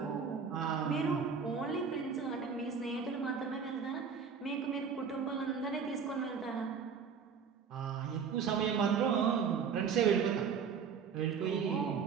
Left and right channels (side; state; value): left; quieter; 6.3 dB